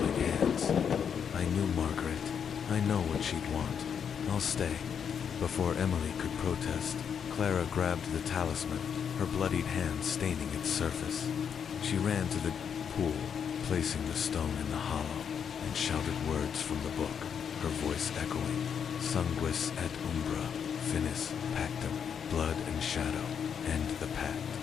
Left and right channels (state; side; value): quieter; right; 7.5 dB